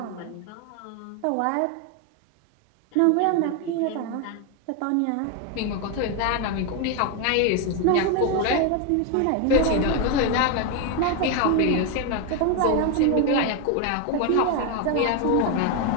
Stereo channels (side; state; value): both; different; correlation 0.01